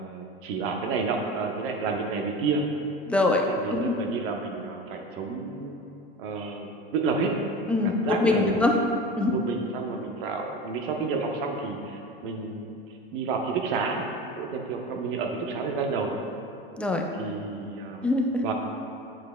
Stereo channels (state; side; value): normal; both; correlation 0.33